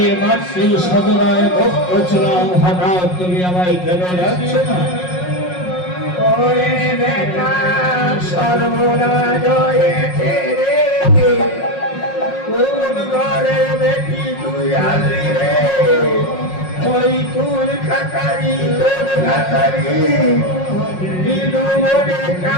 মাত্র সদনায় ভক্ত ছিলাম, হঠাৎ তুমি আমায় কেন যাচ্ছ না? ওরে বেটা সর্বনাশ হয়েছে রে, কোন ঘরে বেটি তুই আসলি রে? ওই কুল খাতারি তোর খাতারি দিদু মনে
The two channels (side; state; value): right; late; 5.5 ms